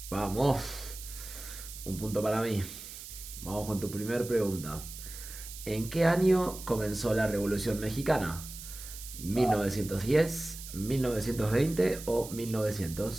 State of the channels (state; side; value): noise; right; hiss, 12 dB below the sound